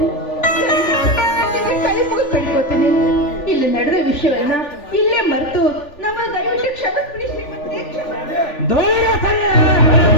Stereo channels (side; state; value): right; late; 3.4 ms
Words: ಕೈ ಮುಗಿದು ಬೇಡ್ಕೋತೀನಿ. ಇಲ್ಲಿ ನಡೆದ ವಿಷಯವನ್ನ ಇಲ್ಲೇ ಮರೆತು ನಮ್ಮ ದಯವಿಟ್ಟು ಕ್ಷಮಿಸ್ಬಿಡಿ ಶ್ರೀಮಂತ್ರಿ, ದೂರ ಸರಿಯ